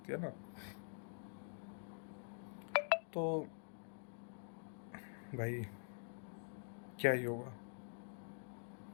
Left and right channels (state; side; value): silent; right; digital silence